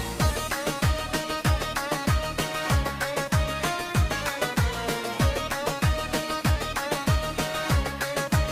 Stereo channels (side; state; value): both; identical; correlation 1.00